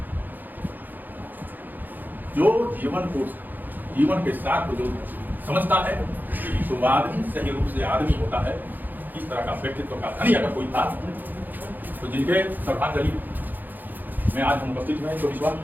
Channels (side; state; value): left; late; 0.086 ms